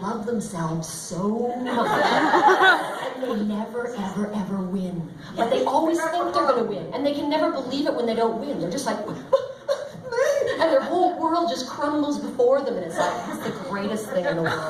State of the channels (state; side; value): identical; both; correlation 1.00